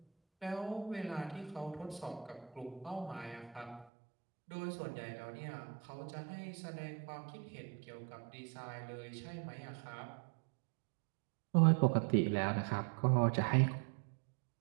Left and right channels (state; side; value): drops out; left; at 3.9 s